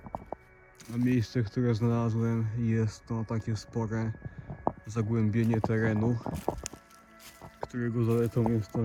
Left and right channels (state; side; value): identical; both; correlation 1.00